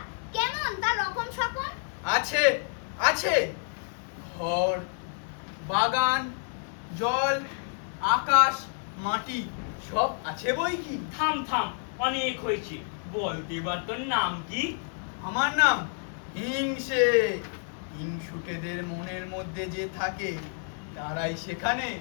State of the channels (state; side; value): silent; right; digital silence